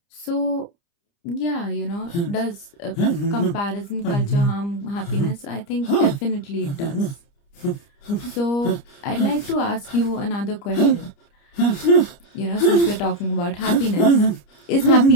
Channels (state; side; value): late; right; 30 ms